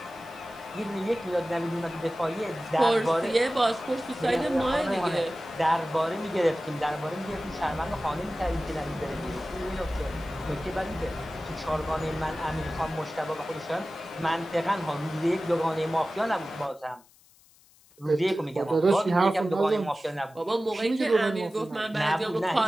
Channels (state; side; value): noise; left; hiss, 28 dB below the sound